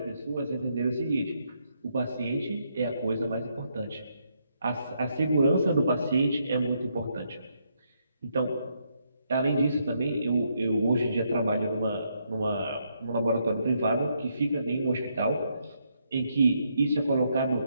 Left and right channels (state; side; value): inverted; both; correlation -0.77